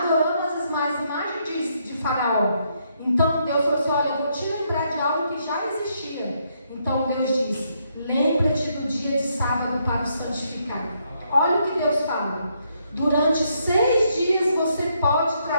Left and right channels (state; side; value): inverted; both; correlation -0.75